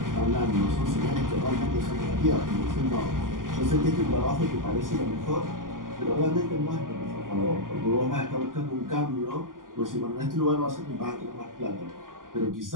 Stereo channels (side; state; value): left; late; 0.89 ms